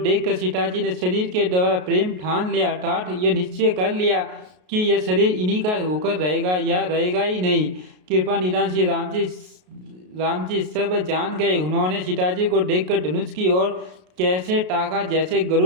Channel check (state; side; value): late; left; 33 ms